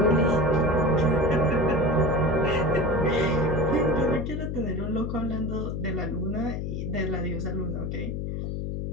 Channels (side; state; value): left; noise; hum, 3 dB below the sound